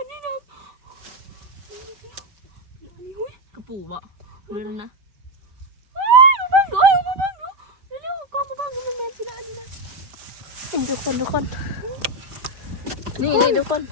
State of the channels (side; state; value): left; late; 5.1 ms